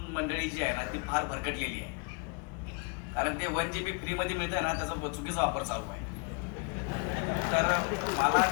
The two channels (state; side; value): quieter; right; 34.7 dB